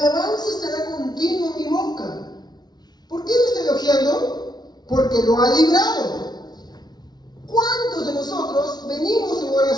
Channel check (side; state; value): right; late; 0.19 ms